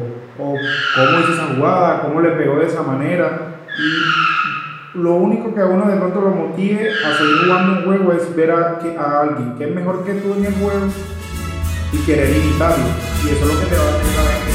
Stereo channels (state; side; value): identical; both; correlation 1.00